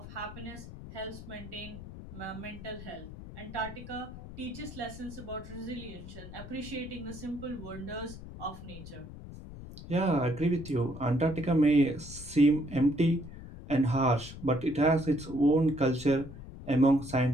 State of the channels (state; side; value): noise; left; rumble, 13 dB below the sound